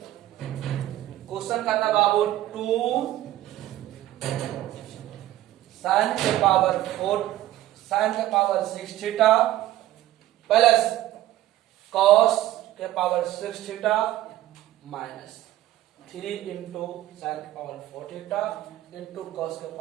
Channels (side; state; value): left; quieter; 14.4 dB